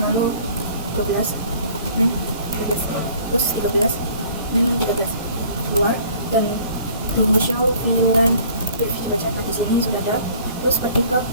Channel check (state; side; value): inverted; both; correlation -0.52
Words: lalu 12 dan 13, terus 13 dan 13 keluar, dan dulu show VLAN brief. Coba cek, nah di sini sudah ada. Terus pergi ke